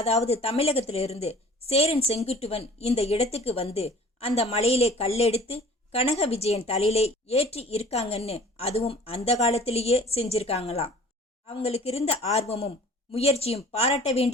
தமிழகத்திலிருந்து சேரன் செங்குட்டுவன் இந்த இடத்துக்கு வந்து அந்த மலையிலே கல்லெடுத்து கனக விஜயன் தலையிலே ஏற்றி இருக்காங்கன்னு, அதுவும் அந்த காலத்திலேயே செஞ்சிருக்காங்களாம். அவங்களுக்கு இருந்த ஆர்வமும் முயற்சியும் பாராட்ட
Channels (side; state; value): both; normal; correlation 0.48